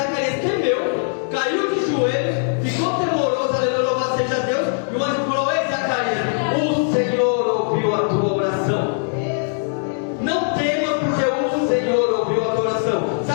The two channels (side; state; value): right; silent; 65 dB below the other